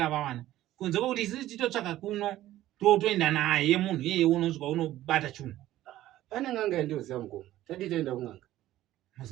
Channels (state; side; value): quieter; left; 14.4 dB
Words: vawana. Kunze kwokuti isisi titotsvaka kuno toenda naye munhu iyeye unosvika unobata chunhu. Pane n'anga yandoziva mukoma. Tadi taenda kun'anga.